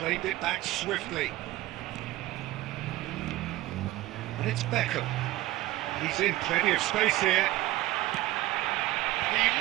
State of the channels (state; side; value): quieter; left; 16.8 dB